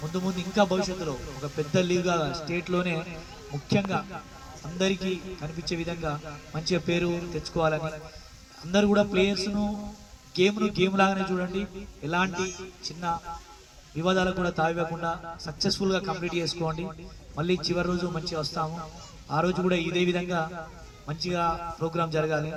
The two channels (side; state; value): both; identical; correlation 1.00